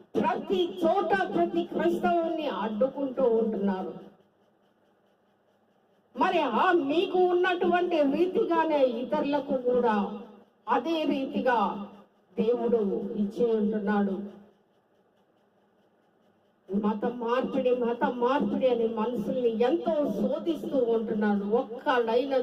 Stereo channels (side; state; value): both; identical; correlation 1.00